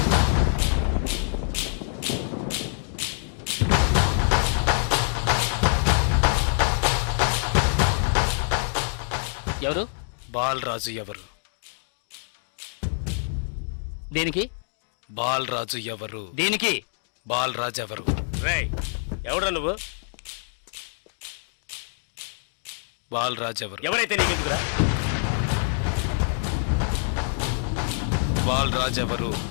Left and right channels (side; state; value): right; silent; digital silence